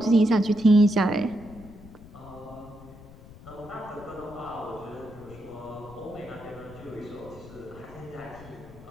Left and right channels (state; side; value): noise; left; rumble, 18 dB below the sound